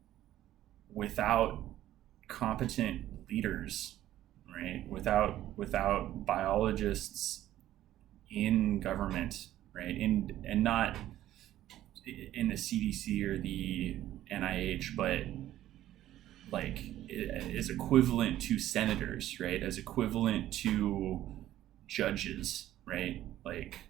without competent leaders, right? Without biologists in government, right? And not in the CDC or the NIH, but like is equivalent to senators, right? As equivalent to judges, right? Like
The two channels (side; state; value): left; quieter; 13.4 dB